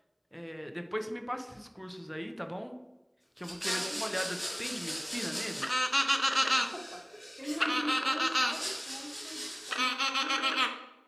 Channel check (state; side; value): identical; both; correlation 1.00